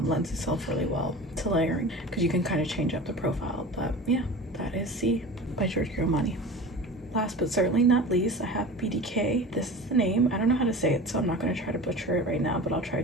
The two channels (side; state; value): both; normal; correlation 0.35